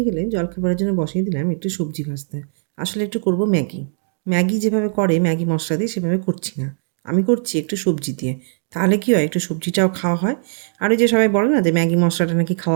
গেলে জলখাবারের জন্য বসিয়ে দিলাম একটু সবজি ভাজতে। আসলে একটু করব ম্যাগি। ম্যাগি যেভাবে করে ম্যাগি মশলা দিয়ে সেভাবে করছি না, আমি করছি একটু সবজি দিয়ে। তাহলে কী হয়, একটু সবজিটাও খাওয়া হয়। আর ওই যে সবাই বলে না যে ম্যাগি মশলাটা নাকি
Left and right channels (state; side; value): silent; left; 60 dB below the other